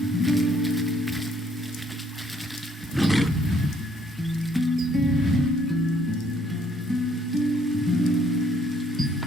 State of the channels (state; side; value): normal; both; correlation 0.65